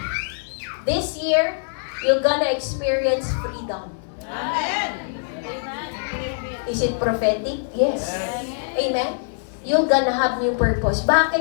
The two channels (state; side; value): silent; right; digital silence